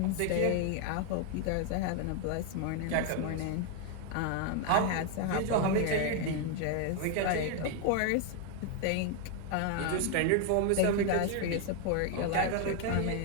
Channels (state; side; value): different; both; correlation 0.01